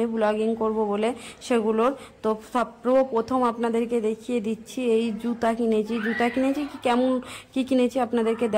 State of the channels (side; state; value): both; identical; correlation 1.00